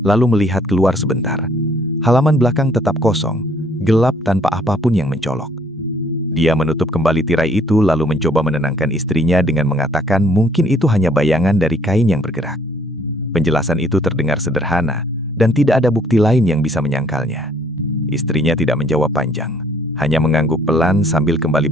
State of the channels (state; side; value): normal; both; correlation 0.62